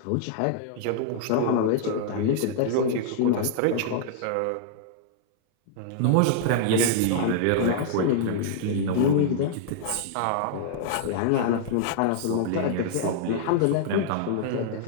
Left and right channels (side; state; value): both; different; correlation -0.01